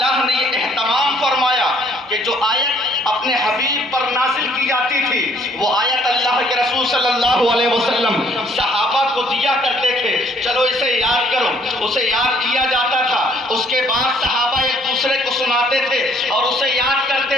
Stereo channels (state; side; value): normal; both; correlation 0.62